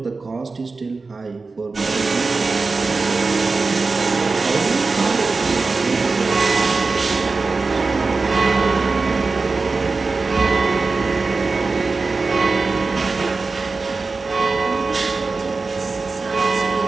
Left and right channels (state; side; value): quieter; left; 4.0 dB